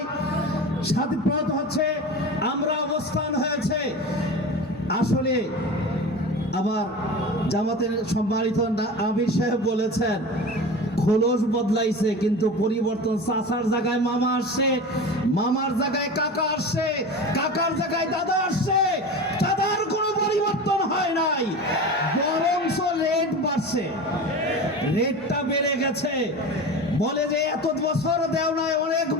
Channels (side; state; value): both; normal; correlation 0.31